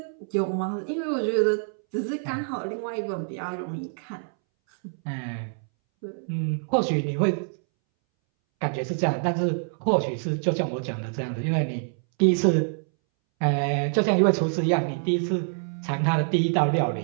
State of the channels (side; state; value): left; silent; 61 dB below the other